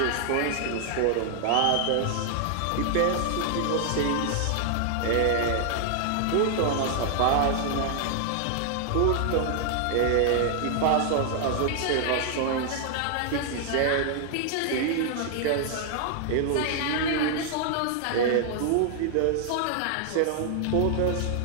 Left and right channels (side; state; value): both; different; correlation 0.00